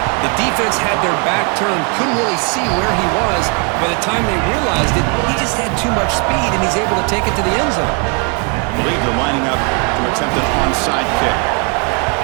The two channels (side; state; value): left; quieter; 36.3 dB